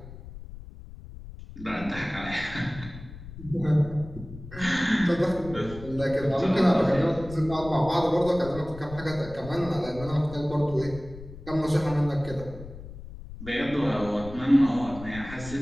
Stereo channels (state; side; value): noise; left; rumble, 14 dB below the sound